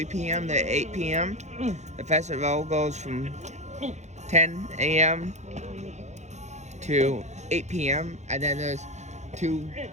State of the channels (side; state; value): left; late; 0.33 ms